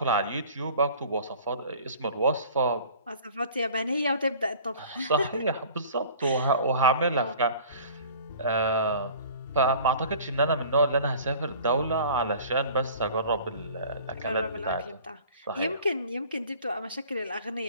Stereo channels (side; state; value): both; inverted; correlation -0.47